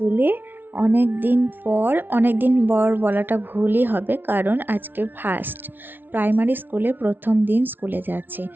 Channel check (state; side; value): late; left; 0.095 ms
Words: অনেক দিন পর বলাটা ভুলই হবে, কারণ আজকে ফার্স্ট প্রাইমারি স্কুলে প্রথম দিন স্কুলে যাচ্ছে।